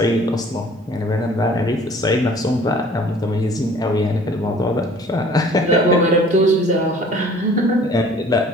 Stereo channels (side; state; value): both; normal; correlation 0.52